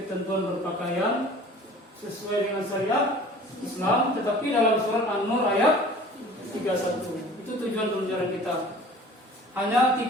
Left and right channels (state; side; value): normal; both; correlation 0.45